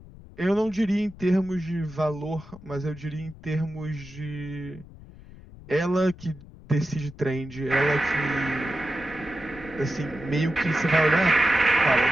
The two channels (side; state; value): left; noise; rumble, 19 dB below the sound